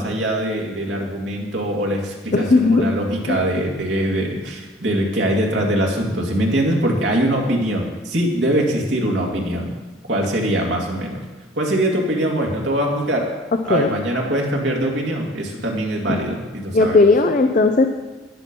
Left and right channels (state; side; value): normal; both; correlation 0.49